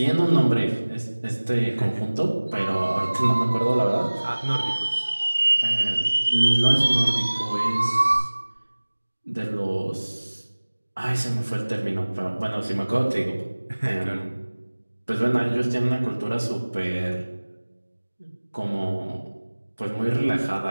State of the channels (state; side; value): inverted; both; correlation -1.00